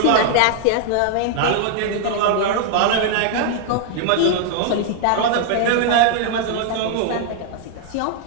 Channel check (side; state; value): both; different; correlation 0.00